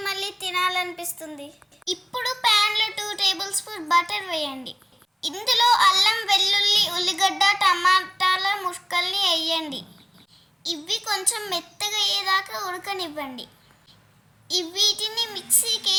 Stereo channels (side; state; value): both; identical; correlation 1.00